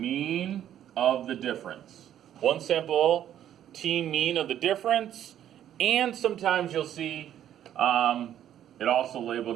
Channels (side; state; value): left; quieter; 10.9 dB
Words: of the difference. One sample t mean of the difference, and sometimes you'll see it also